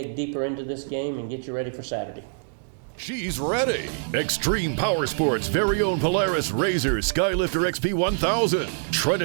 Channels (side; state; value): left; silent; digital silence